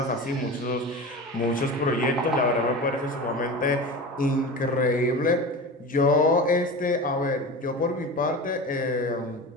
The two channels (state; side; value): normal; both; correlation 0.30